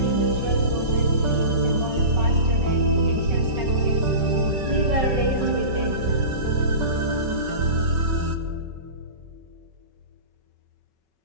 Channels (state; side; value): late; left; 5.3 ms